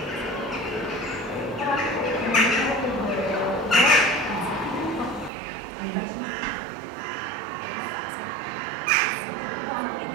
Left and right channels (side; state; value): left; drops out; at 5.3 s